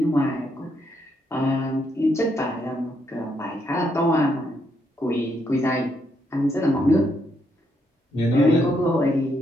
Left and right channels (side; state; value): both; normal; correlation 0.76